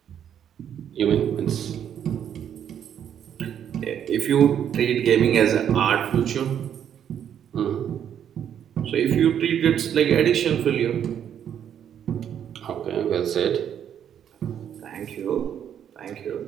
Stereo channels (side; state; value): left; quieter; 9.2 dB